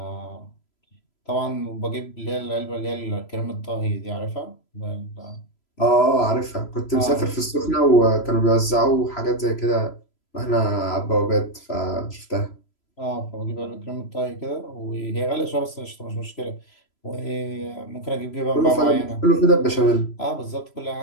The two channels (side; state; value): right; late; 3.0 ms